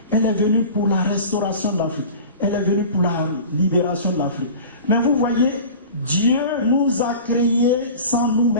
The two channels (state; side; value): inverted; both; correlation -0.37